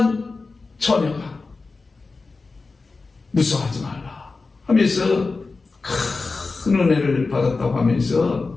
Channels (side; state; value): right; quieter; 4.0 dB